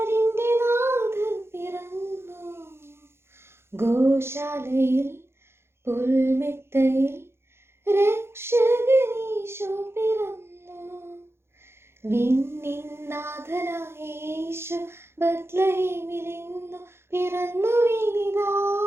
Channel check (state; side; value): late; left; 0.12 ms